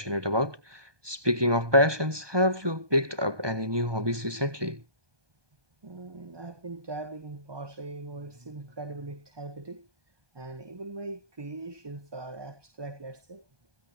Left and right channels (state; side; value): late; left; 1.2 ms